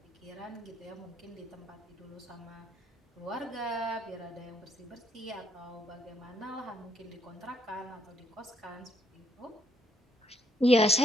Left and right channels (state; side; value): normal; both; correlation 0.71